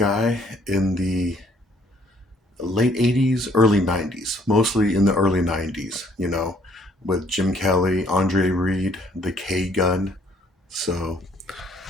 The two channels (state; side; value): normal; both; correlation 0.63